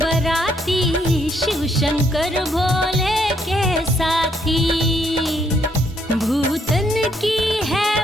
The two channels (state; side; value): normal; both; correlation 0.71